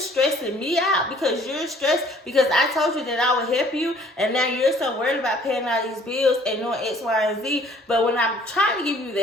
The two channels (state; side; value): normal; both; correlation 0.57